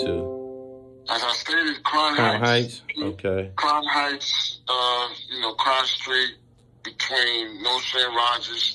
As I stated, Crown Heights. Okay. Crown Heights, Crown Street, between North and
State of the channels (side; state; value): both; identical; correlation 1.00